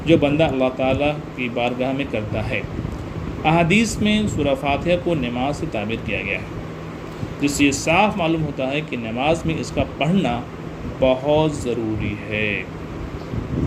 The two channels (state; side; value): identical; both; correlation 1.00